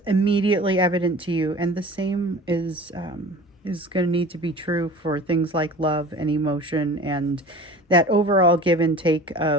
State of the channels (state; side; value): normal; both; correlation 0.41